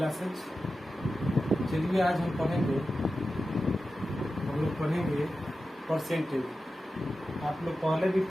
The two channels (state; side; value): normal; both; correlation 0.93